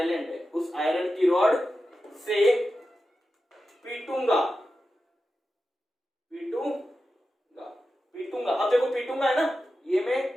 है। उस आयरन की रॉड से पीटूंगा, पीटूंगा। अब देखो पीटूंगा है ना, ये मैं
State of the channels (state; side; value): normal; both; correlation 0.91